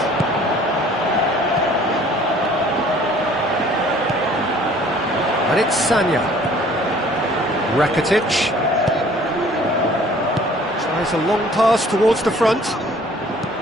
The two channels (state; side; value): normal; both; correlation 0.54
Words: And it's Sanya. Rakitic. Tries a long pass towards the front.